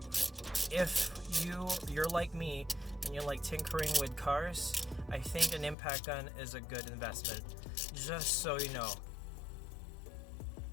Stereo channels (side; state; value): right; drops out; at 5.8 s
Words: If you're like me and you like tinkering with cars, I think an impact gun is a good investment. Just so you know.